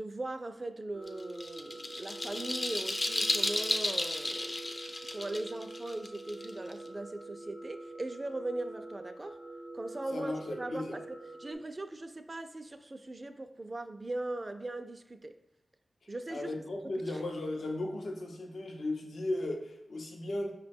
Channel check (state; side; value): normal; both; correlation 0.95